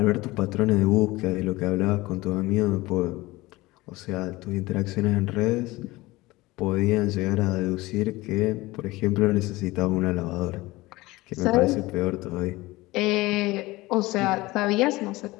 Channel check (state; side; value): quieter; right; 20.2 dB